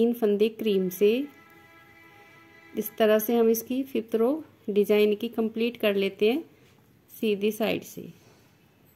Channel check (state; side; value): identical; both; correlation 1.00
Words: फंदे क्रीम से। इस तरह से हम इसकी फिफ्थ रो डिजाइन की कंप्लीट कर लेते हैं सीधी साइड से।